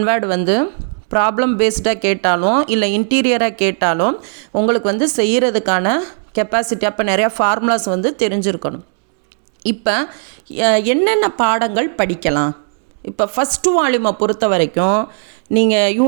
வேர்டு வந்து ப்ராப்ளம் பேஸ்டாக கேட்டாலும் இல்லை இன்டீரியராக கேட்டாலும் உங்களுக்கு வந்து செய்கிறதுக்கான கெப்பாசிட்டி, அப்போ நிறையா ஃபார்முலாஸ் வந்து தெரிஞ்சிருக்கணும். இப்போ என்னென்ன பாடங்கள் படிக்கலாம்? இப்போ ஃபஸ்ட்டு வால்யூமை பொறுத்த வரைக்கும் நீங்கள்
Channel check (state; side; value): silent; left; 61 dB below the other